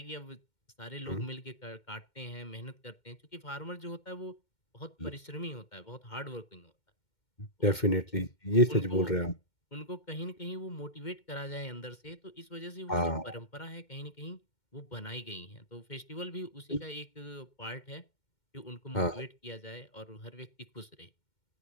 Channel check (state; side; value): late; right; 2.1 ms